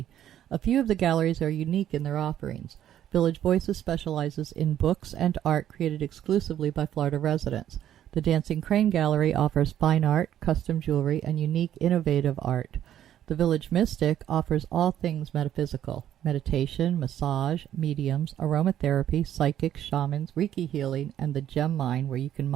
A few of the galleries are unique in their offerings. Village Voices specializes in books and art created exclusively by Florida residents. The Dancing Crane Gallery offers fine art, custom jewelry, and unique, innovative art. The Village Mystic offers all things metaphysical: meditation, massage, mediums, aromatherapy, psychics, shamans, Reiki healing, and the gem mine, where you can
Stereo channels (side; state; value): left; quieter; 11.1 dB